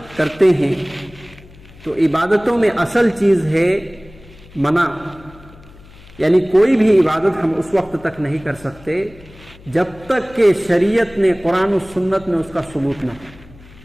کرتے ہیں تو عبادتوں میں اصل چیز ہے منع، یعنی کوئی بھی عبادت ہم اس وقت تک نہیں کر سکتے جب تک کہ شریعت نے قرآن و سنت میں اس کا ثبوت نہ ہو۔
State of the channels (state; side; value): noise; left; hum, 22 dB below the sound